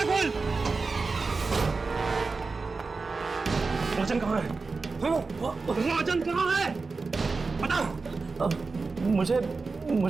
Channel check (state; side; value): quieter; left; 4.2 dB